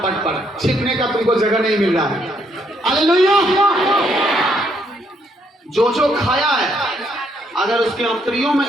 पर, छिपने का तुमको जगह नहीं मिल रहा है। हालेलुया। जो खाया है अगर उसके अंतरियों में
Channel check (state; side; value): normal; both; correlation 0.72